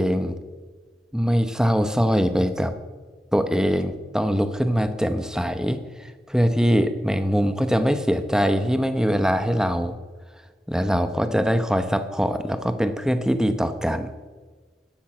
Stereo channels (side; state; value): both; normal; correlation 0.94